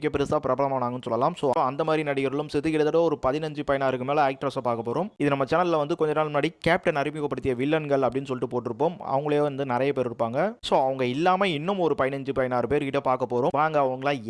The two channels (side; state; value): both; identical; correlation 1.00